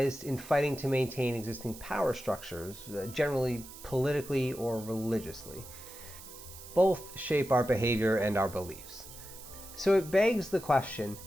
in fighting to maintain existing power structures, generally politically or religiously. Both shape our behavior and our beliefs. So it begs the question,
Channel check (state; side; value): noise; right; hiss, 15 dB below the sound